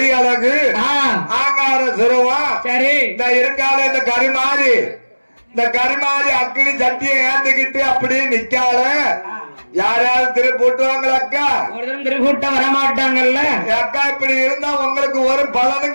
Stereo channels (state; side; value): inverted; both; correlation -1.00